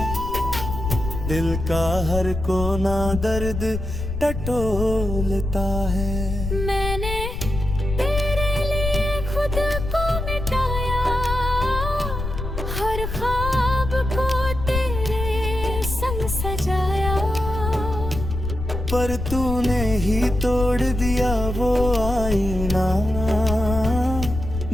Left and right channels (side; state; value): left; noise; rumble, 5 dB below the sound